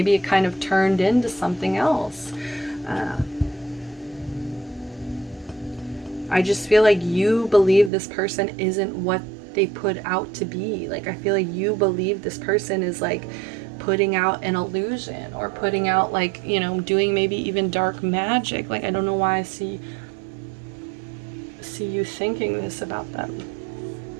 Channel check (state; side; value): drops out; left; at 7.9 s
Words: it kind of turned into something else. I just feel like you believe this person isn't what they put out to be. Like, I feel like you believe this person is like putting out an illusion, or putting out like, you know, doing maybe even dark magic. Like, I don't know why I see you thinking this about them.